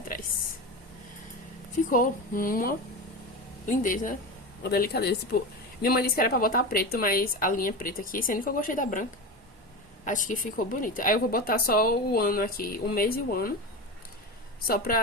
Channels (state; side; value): normal; both; correlation 0.23